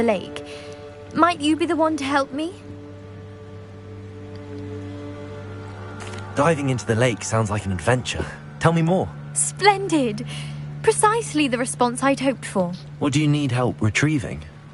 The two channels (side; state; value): both; identical; correlation 1.00